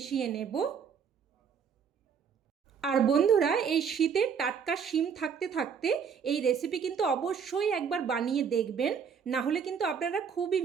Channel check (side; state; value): left; quieter; 6.8 dB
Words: নেব। আর বন্ধুরা, এই শীতে টাটকা শিম থাকতে থাকতে এই রেসিপি কিন্তু অবশ্যই একবার বানিয়ে দেখবেন, না হলে কিন্তু আপনারা খুবই